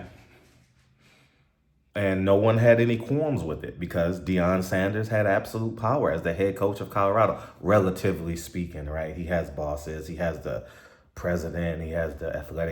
And no one had any qualms with it because Deion Sanders had absolute power as the head coach of Colorado, relatively speaking, right? He has bosses, he has the president, he has the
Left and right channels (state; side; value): identical; both; correlation 1.00